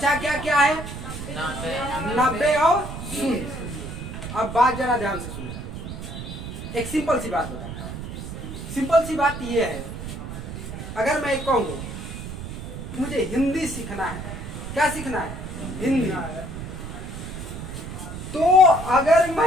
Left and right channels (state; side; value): noise; right; rumble, 8 dB below the sound